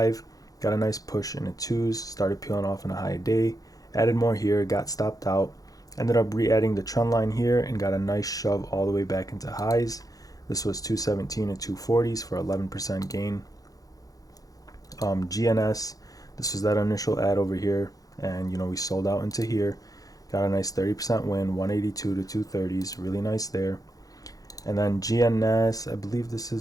Got a nice push in the 2s. Started peeling off in a high day. Added more here. Got stopped out. Ended up re-adding the trend line here and got a nice shove all the way back into highs. This was 217 and 240s for 11% gain. GNS, this was that initial ad over here, and we sold out into here. Got a nice 30% win, 182 to 230s, really nice there. And then GNS, I believe this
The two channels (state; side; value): late; right; 0.17 ms